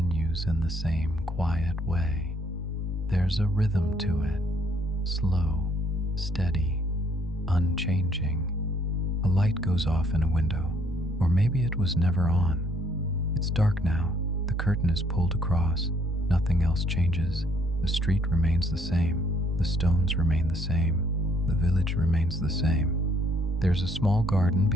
in the same quiet way. There's a rhythm to it, slow, steady, unchanging. A light goes off in a window, or maybe it was never on. It's dark now. The curtain is pulled across. Nothing else changes. The street remains the same. The stones remain the same. The village remains the same. There's a small garden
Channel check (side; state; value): both; normal; correlation 0.66